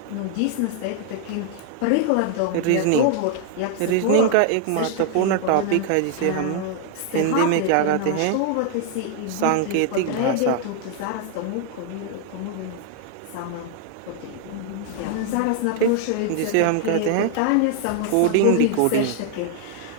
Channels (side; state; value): both; different; correlation 0.00